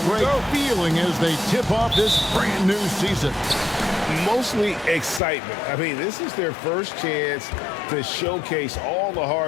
Greg, feeling as they tip off this brand new season? Mostly excitement. I mean, this is their first chance to showcase all the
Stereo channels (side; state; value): right; drops out; at 5.2 s